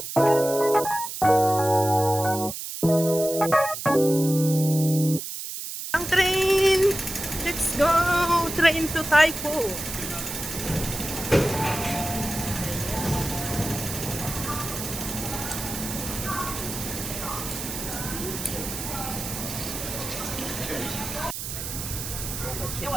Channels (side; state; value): right; noise; hiss, 7 dB below the sound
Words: Ang train! Let's go! Train to Taipo.